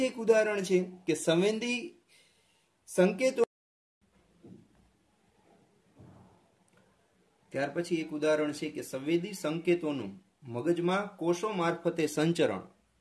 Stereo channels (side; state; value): both; identical; correlation 1.00